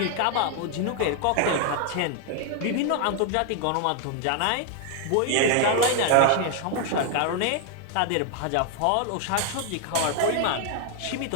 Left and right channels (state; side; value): different; both; correlation 0.00